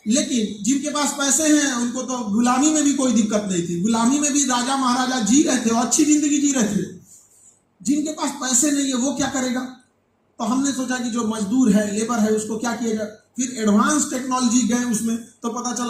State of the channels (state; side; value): identical; both; correlation 1.00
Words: लेकिन जिनके पास पैसे हैं उनको तो गुलामी में भी कोई दिक्कत नहीं थी, गुलामी में भी राजा महाराजा जी रहे थे और अच्छी जिंदगी जी रहे थे। जिनके पास पैसे नहीं है वो क्या करेगा? तो हमने सोचा कि जो मजदूर है, लेबर है, उसको क्या किया जाए। फिर एडवांस टेक्नोलॉजी गए उसमें, तो पता